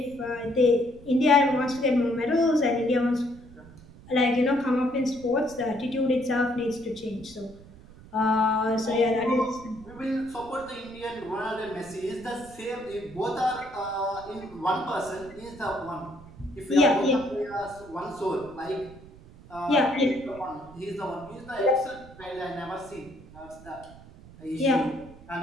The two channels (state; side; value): noise; right; rumble, 20 dB below the sound